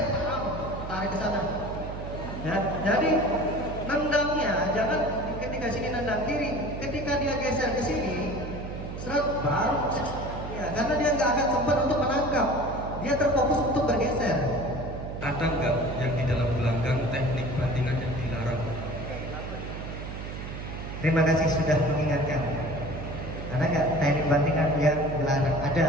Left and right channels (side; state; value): right; noise; hum, 8 dB below the sound